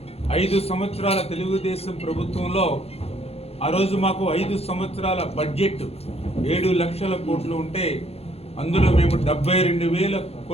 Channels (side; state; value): right; late; 0.29 ms